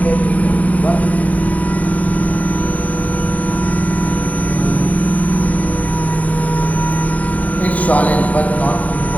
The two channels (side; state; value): right; late; 0.071 ms